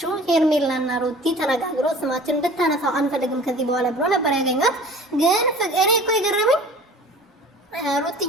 ሄርሜላና ሩቲ ተነጋግሮ ስማችን እንድታነሳው አንፈልግም ከዚህ በኋላ ብሎ ነበር ያገኛት። ግን እኔ እኮ የገረመኝ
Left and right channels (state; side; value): normal; both; correlation 0.45